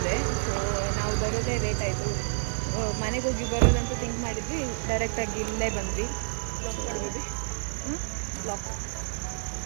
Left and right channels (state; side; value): silent; left; digital silence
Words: ಸೊ ನಾವು ಬರೋದೇ ಲೇಟ್ ಆಯಿತು. ಮನೆಗೆ ಹೋಗಿ ಬರೋದಂತ ಥಿಂಕ್ ಮಾಡಿದ್ವಿ, ಡೈರೆಕ್ಟಾಗಿ ಇಲ್ಲೇ ಬಂದ್ವಿ.